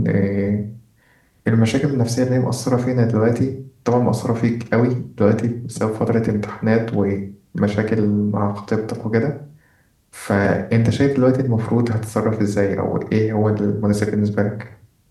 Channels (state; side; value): identical; both; correlation 1.00